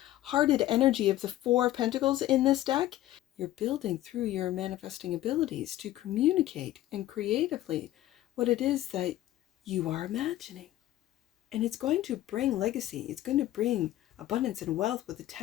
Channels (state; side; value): quieter; right; 14.4 dB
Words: energy of the Four of Pentacles in this deck, you're building through your manifesting abilities to communicate and creatively what it is that you are imagining. And it's going to bring legacy. It's going to bring abundance and wealth with the